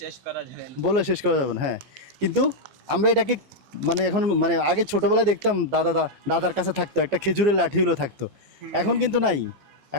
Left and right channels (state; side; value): late; left; 14 ms